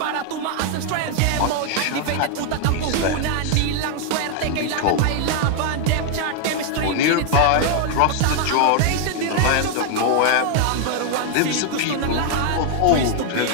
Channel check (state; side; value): different; both; correlation 0.00